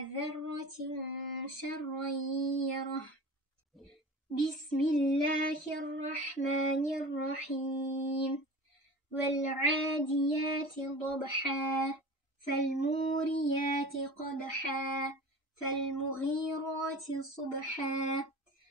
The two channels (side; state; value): both; normal; correlation 0.36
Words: ذرة شرا يره بسم الله الرحمن الرحيم والعاديات ضبحا فالموريات قدحا فالمغيرات صبحا